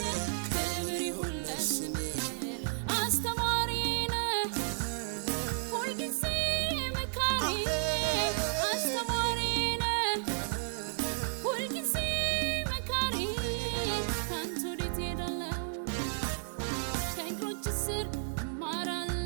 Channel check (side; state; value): left; silent; 56 dB below the other